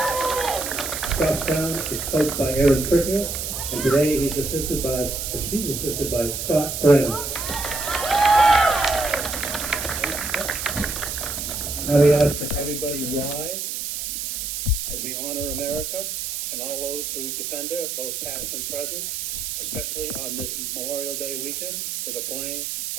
Goffstown is coached by Aaron Trickier, and today she's assisted by Scott Brennan. Now we ask that everybody rise as we honor America and all those who defend her, both past and present, especially on this Memorial Day weekend with the playing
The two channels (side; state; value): right; noise; hiss, 4 dB below the sound